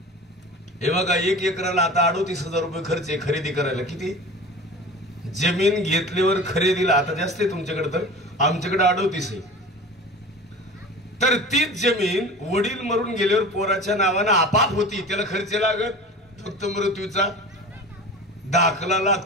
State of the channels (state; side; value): normal; both; correlation 0.36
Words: हे बघा 1 एकराला आता 38,000 रुपये खर्च आहे खरेदी करायला. किती? जमीन घेतल्यावर खरेदीला आता जास्त आहे तुमच्याकडे, तर आमच्याकडे 38 आहे. तर तीच जमीन वडील मरून गेल्यावर पोराच्या नावानं आपाप होती. त्याला खर्च लागत, फक्त मृत्यूचा दाखला